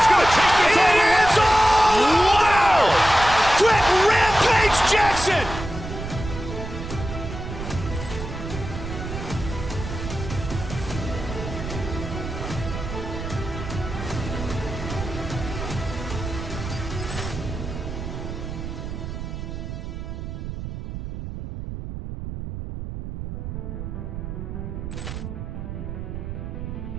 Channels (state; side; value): noise; right; rumble, 7 dB below the sound